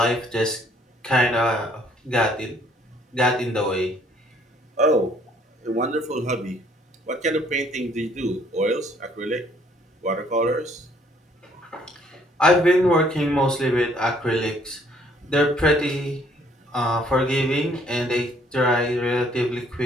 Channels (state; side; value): normal; both; correlation 0.63